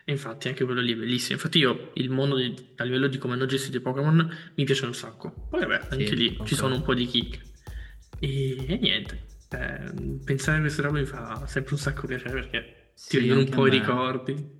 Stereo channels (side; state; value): both; identical; correlation 1.00